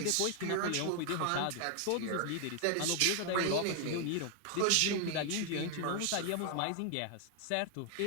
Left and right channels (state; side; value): different; both; correlation 0.00